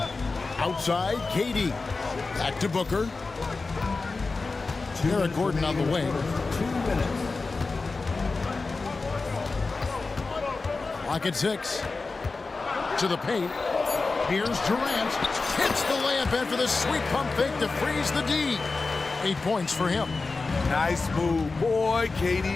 Outside, KD. Back to Booker. Eric Gordon on the wing. 2 minutes. Clock at 6. To the paint. Here's Durant. Hits the layup in for the sweet pump fake to freeze the D. 8 points for him. Nice move. Boy,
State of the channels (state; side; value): quieter; right; 3.9 dB